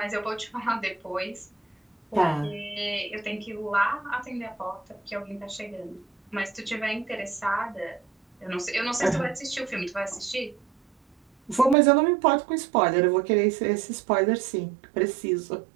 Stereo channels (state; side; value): drops out; left; at 11.8 s